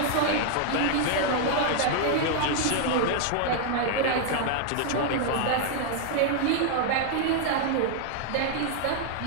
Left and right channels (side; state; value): both; different; correlation 0.00